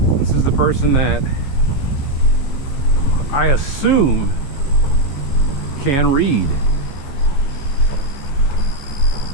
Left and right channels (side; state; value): right; late; 15 ms